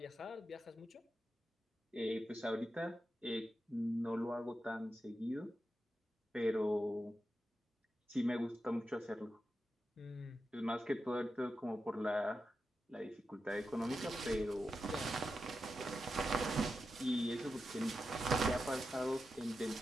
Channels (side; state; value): both; normal; correlation 0.89